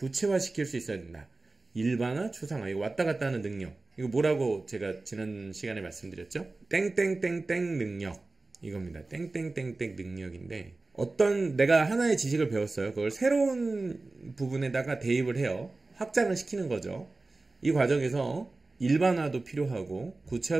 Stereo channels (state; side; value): quieter; left; 3.3 dB